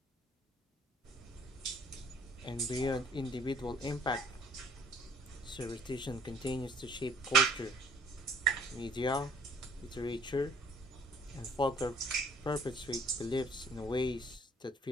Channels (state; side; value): normal; both; correlation 0.57